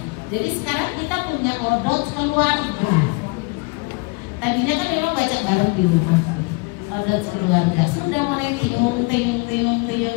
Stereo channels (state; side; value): quieter; right; 28.2 dB